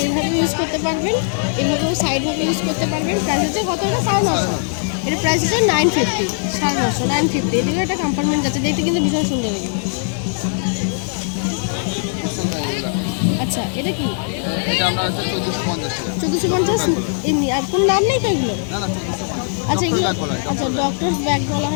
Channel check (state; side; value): silent; right; 60 dB below the other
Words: এইভাবে ইউজ করতে পারবেন, এইভাবেও সাইডভাবে ইউজ করতে পারবেন। প্রাইস হচ্ছে কত? এটা 950। এটা প্রাইস হচ্ছে 950, 950, 950। এদিকে একটা কম্পার্টমেন্ট যাচ্ছে, দেখতে কিন্তু ভীষণ সুন্দর লাগে। আচ্ছা এটা কি? এটা আমরা 1450 টাকা। 1450 এমনি, আর কোনো নাম নেই তো এগুলো? না না 1450। আচ্ছা এগুলো, আচ্ছা ডক্টর ব্যাগ বলা